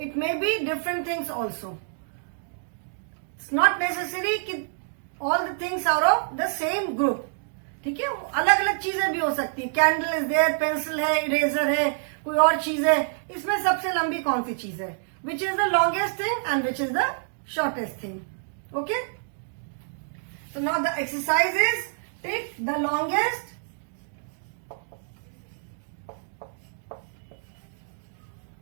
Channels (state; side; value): silent; left; digital silence